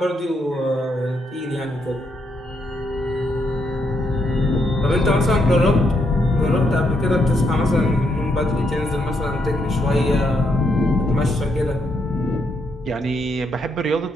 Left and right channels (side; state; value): both; normal; correlation 0.77